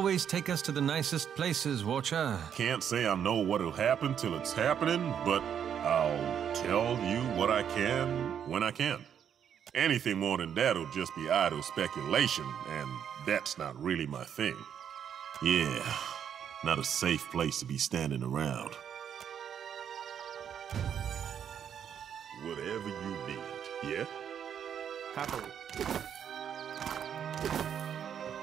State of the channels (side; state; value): left; quieter; 8.6 dB